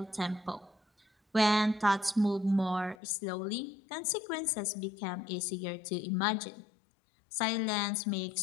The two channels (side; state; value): right; drops out; at 3.0 s